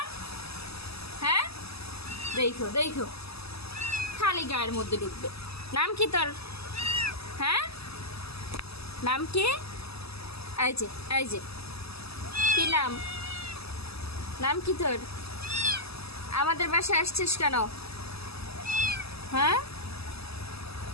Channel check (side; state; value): right; late; 0.78 ms